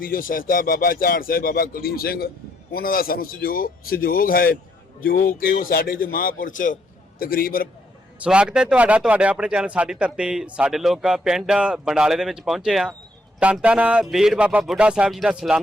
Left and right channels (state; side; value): normal; both; correlation 0.72